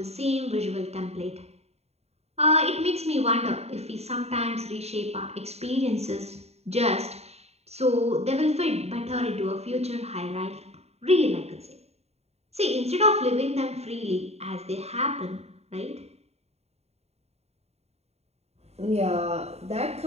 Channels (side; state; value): left; late; 0.30 ms